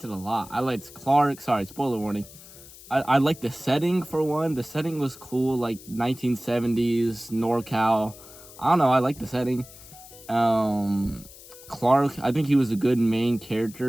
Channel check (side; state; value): left; noise; hiss, 19 dB below the sound